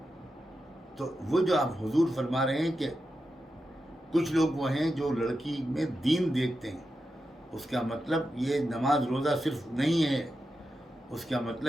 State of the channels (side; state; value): both; normal; correlation 0.89